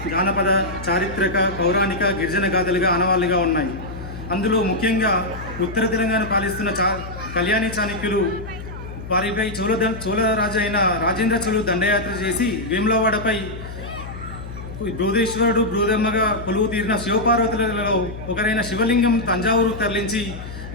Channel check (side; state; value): left; noise; hum, 11 dB below the sound